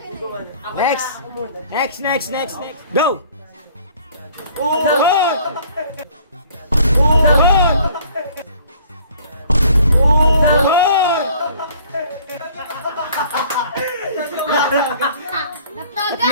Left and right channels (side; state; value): both; inverted; correlation -0.55